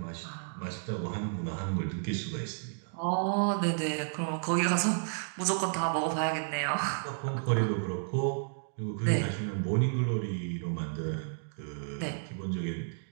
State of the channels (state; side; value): silent; left; digital silence